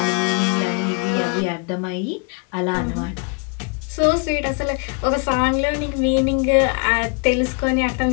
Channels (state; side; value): quieter; right; 32.3 dB